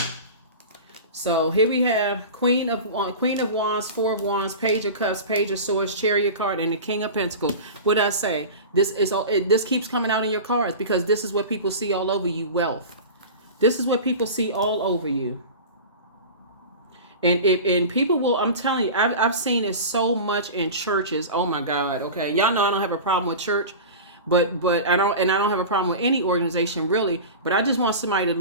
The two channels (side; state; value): both; inverted; correlation -0.31